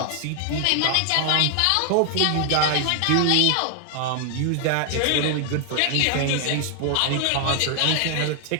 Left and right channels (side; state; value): both; different; correlation 0.00